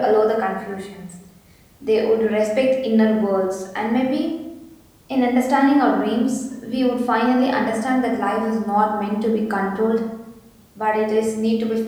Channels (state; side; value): identical; both; correlation 1.00